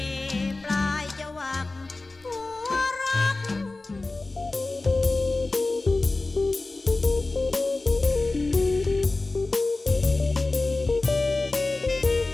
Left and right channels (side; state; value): right; quieter; 3.3 dB